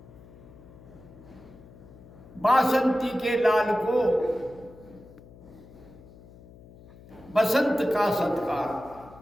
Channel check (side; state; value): left; noise; hum, 21 dB below the sound